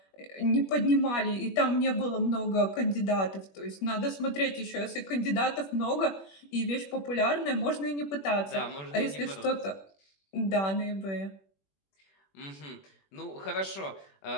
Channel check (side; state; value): right; late; 21 ms